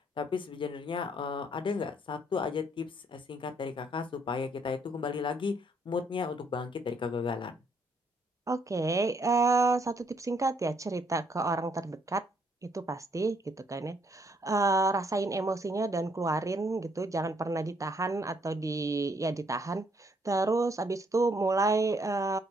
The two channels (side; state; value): both; normal; correlation 0.70